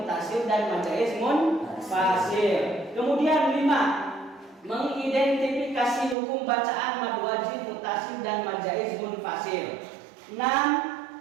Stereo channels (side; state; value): left; drops out; at 6.2 s